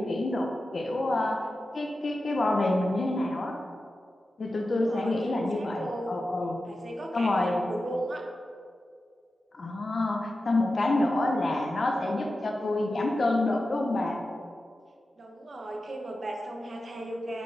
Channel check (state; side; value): normal; both; correlation 0.92